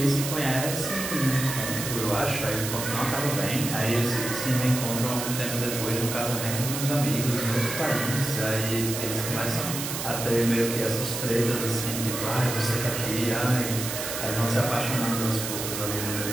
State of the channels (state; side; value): noise; right; hiss, 5 dB below the sound